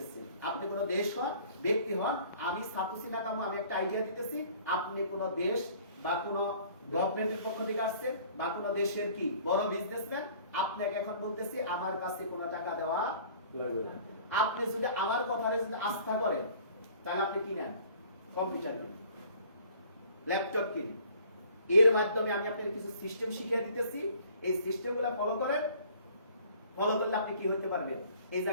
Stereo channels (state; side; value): inverted; both; correlation -0.53